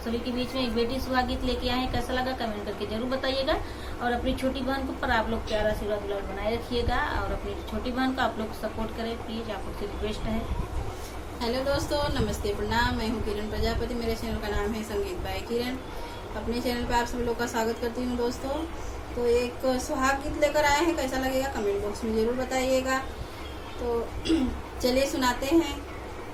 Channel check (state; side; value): identical; both; correlation 1.00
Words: सभी के बीच में एक बेटी सुहा गीत लेके आए हैं। कैसा लगा कमेंट करके जरूर बताइएगा और अपनी छोटी बहन को पर आप लोग प्यारा आशीर्वाद दुलार बनाए रखिएगा और अपनी छोटी बहन को आप लोग सपोर्ट करें प्लीज, आप लोग से रिक्वेस्ट है। हेलो दोस्तों, नमस्ते, प्रणाम। मैं हूँ किरण प्रजापति। मेरे चैनल का नाम है संगीत बाय किरण। अपने चैनल पे आप सभी लोग का स्वागत करती हूँ दोस्तों। तो एक सुहाग गीत लेकर आए हैं, कैसा लगेगा कमेंट बॉक्स में जरूर बताइएगा। तो चलिए सुनाते हैं।